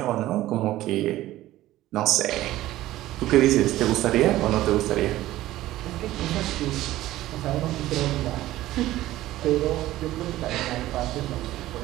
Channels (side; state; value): left; quieter; 15.5 dB